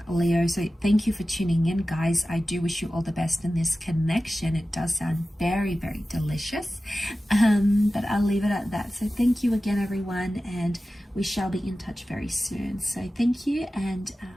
Leo. So thank you for tuning in, guys. I do wish you all the best in this connection. It does sound very, very delicious, but I'll leave it at that. So thank you again, everyone, and we shall be in touch very soon. So thank you, and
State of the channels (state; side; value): normal; both; correlation 0.95